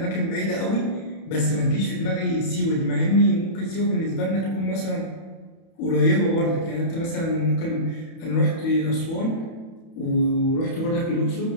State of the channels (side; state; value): right; late; 31 ms